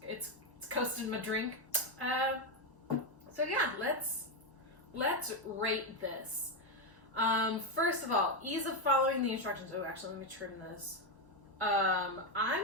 It's coasting my drink. So yeah, let's rate this. First of all, ease of following the instructions. Oh, actually, let me trim this. I'm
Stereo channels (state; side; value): normal; both; correlation 0.07